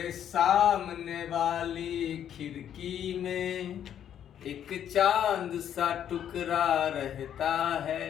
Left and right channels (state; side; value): quieter; right; 9.7 dB